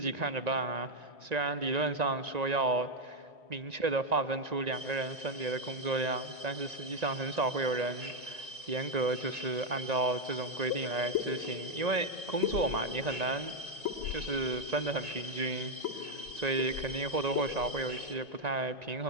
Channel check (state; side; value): late; left; 1.9 ms